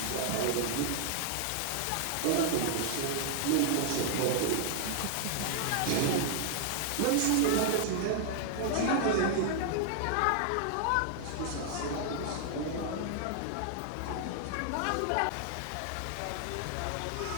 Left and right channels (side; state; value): both; different; correlation 0.00